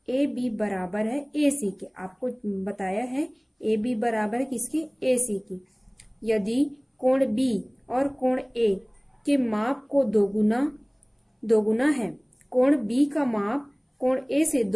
ए बी बराबर है ए सी के। आपको बताया है ए बी बराबर है किसके, ए सी की। यदि कोण बी और कोण ए के माप को दोगुना है, कोण बी का माप कोण ए से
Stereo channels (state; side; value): identical; both; correlation 1.00